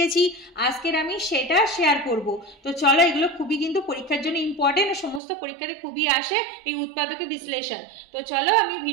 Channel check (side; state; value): left; drops out; at 5.2 s